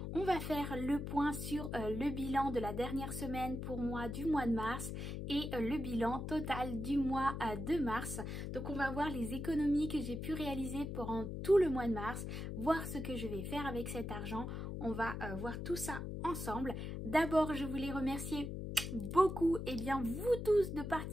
On va faire le point sur le bilan de la dernière semaine pour moi du mois de mars et le bilan total du mois de mars. Donc on va voir les économies que j'ai pu réaliser pendant tout le mois de mars, voir ce que je vais faire avec cet argent. On va voir tout ça ensemble. D'abord, je voulais remercier beaucoup vous tous de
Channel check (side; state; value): left; noise; hum, 5 dB below the sound